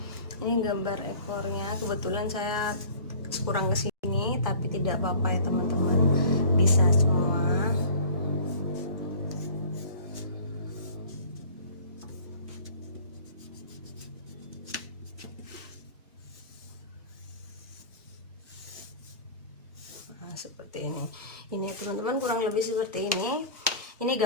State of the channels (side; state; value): both; inverted; correlation -0.44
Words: ini gambar ekornya. Kebetulan saya kurang kesini, tapi tidak apa-apa ya teman-teman, bisa semua. Seperti ini teman-teman, kurang lebih seperti ini